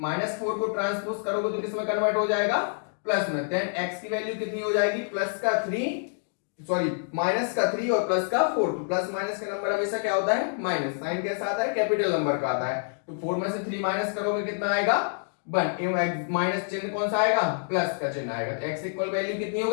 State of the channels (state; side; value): silent; right; digital silence